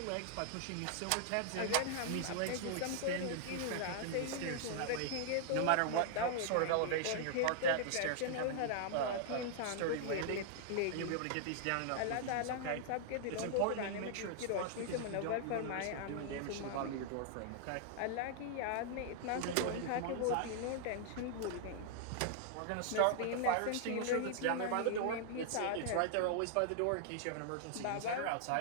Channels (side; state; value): both; different; correlation -0.01